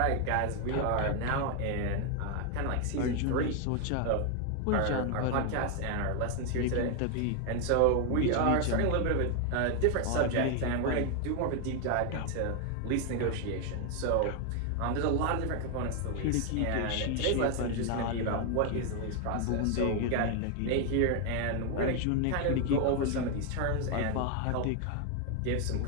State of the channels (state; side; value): different; both; correlation 0.01